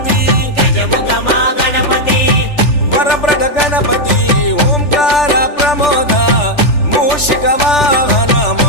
వరప్రద గణపతి ఓంకార ప్రమోద మూషిక వాహన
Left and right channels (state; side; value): late; right; 3.4 ms